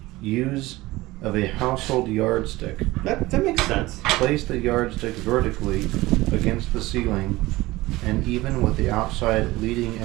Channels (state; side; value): quieter; left; 19.2 dB